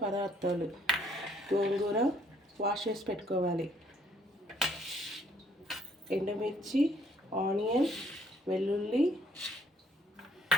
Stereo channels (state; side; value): normal; both; correlation 0.66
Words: పదార్థాలు: గోంగూర వాష్ చేసి పెట్టుకోవాలి, ఎండుమిర్చి, ఆనియన్, వెల్లుల్లి,